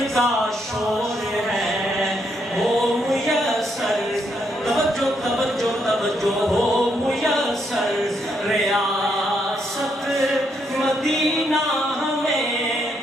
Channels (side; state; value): both; normal; correlation 0.76